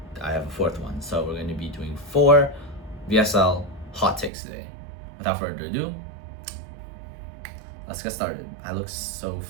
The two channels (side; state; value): left; drops out; at 4.3 s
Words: I have a 4th one. So we're going to be doing 4 VSL hot takes today. Without further ado, let's get started. I look so